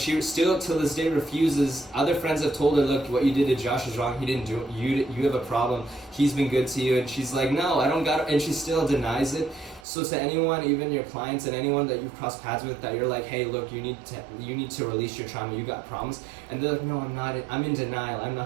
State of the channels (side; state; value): left; drops out; at 9.9 s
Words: still till this day refuses. Other friends have told her, look, what you did to Josh is wrong. He didn't do it. You have a problem. He's been good to you. And she's like, no, I don't got it. And she still denies it. So to anyone, even your clients and anyone that you've crossed paths with, that you're like, hey, look, you need to release your trauma. You got problems. And they're like, no, I'm not. I'm in denial. I'm